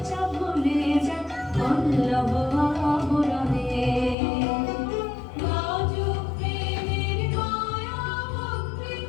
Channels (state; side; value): drops out; right; at 4.2 s